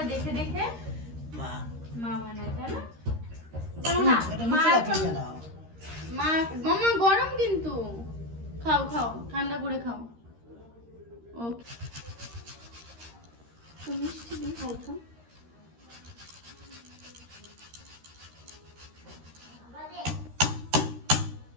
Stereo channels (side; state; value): left; late; 13 ms